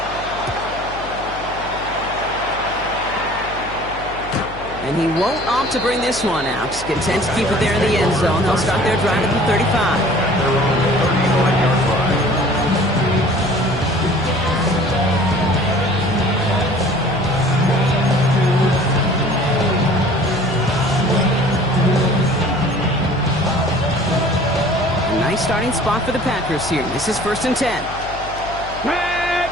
And he won't opt to bring this one out. Content to keep it there in the end zone. They'll start their drive at the 35. Nice starting spot for the Packers here. This is 1st and 10. Red.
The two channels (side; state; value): left; noise; hum, 15 dB below the sound